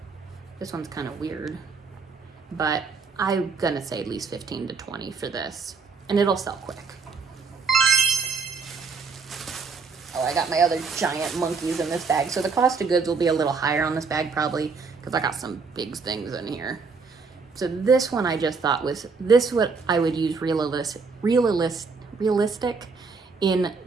This one's kind of weird. But I'm gonna say at least 15 to 20 for this, and it'll sell quick. Oh, I got my other giant monkeys in this bag, so the cost of goods will be a little higher on this bag probably, because I got some big things in here. So this one I just thought was, this what I would use realistic in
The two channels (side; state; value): left; quieter; 4.8 dB